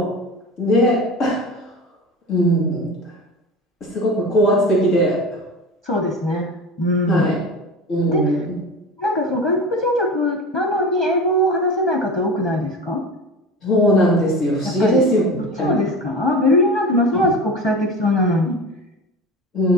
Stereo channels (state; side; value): normal; both; correlation 0.31